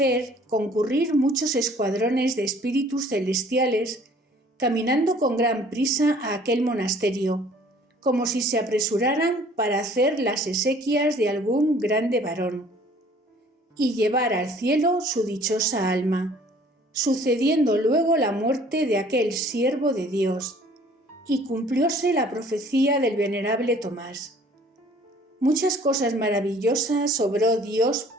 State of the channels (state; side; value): normal; both; correlation 0.54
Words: concurrir muchos escuadrones de espíritus celestiales caminando con gran prisa a aquel monasterio, como si se apresuraran para hacer las exequias de algún grande varón y llevar al cielo su dichosa alma, sucediendo luego la muerte de aquel siervo de Dios, y cumplióse la profecía del venerable Tomás. Muchas cosas maravillosas obró Dios